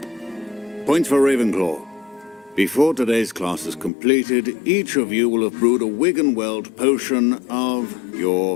Points for Ravenclaw. Before today's class is completed, each of you will have brewed a Wigan-Weld potion of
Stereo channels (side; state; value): right; drops out; at 3.9 s